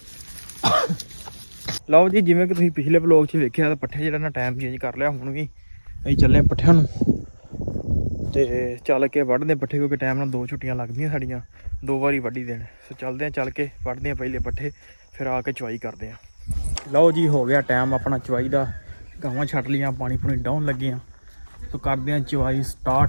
ਲਓ ਜੀ ਜਿਵੇਂ ਕਿ ਤੁਸੀਂ ਪਿਛਲੇ ਵਲੌਗ 'ਚ ਵੇਖਿਆ ਤਾਂ ਪੱਠੇ ਜਿਹੜਾ ਨਾ ਟਾਈਮ ਚੇਂਜ ਕਰ ਲਿਆ ਹੁਣ ਵੀ ਅਸੀਂ ਚੱਲੇ ਪੱਠਿਆਂ ਨੂੰ ਤੇ ਚੱਲ ਕੇ ਵੱਢਦੇ ਪੱਠੇ ਕਿਉਂਕਿ ਟਾਈਮ ਨਾਲ 2 ਛੁੱਟੀਆਂ ਲੱਗਦੀਆਂ ਸਾਡੀਆਂ 2 ਵਾਰੀ ਵੱਢੀ ਦੇਣ ਸੋ ਚੱਲਦੇ ਆ ਚੱਲ ਕੇ ਵੱਢਦੇ ਆ ਪਹਿਲੇ ਪੱਠੇ ਫਿਰ ਆ ਕੇ ਚਵਾਈ ਕਰਦੇ ਆ ਲਓ ਜੀ ਹੋ ਗਿਆ ਟਾਈਮ ਆਪਣਾ ਚਵਾਈ ਦਾ ਗਾਵਾਂ ਛੱਡ ਲੀਆਂ ਪਾਣੀ ਪੂਣੀ ਡਾਉਣ ਲੱਗੇ ਆ ਸੋ ਕਰਦੇ ਆ ਚਵਾਈ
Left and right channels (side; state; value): both; inverted; correlation -1.00